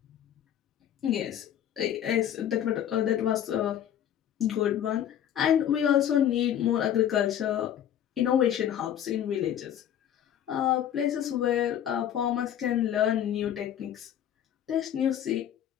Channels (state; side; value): quieter; right; 10.3 dB